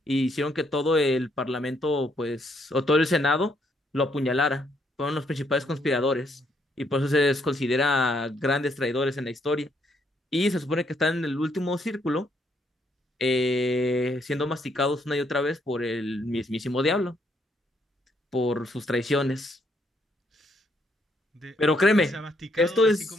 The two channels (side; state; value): both; normal; correlation 0.72